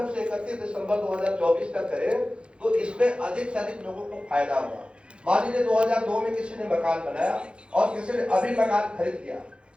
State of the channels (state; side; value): late; left; 0.057 ms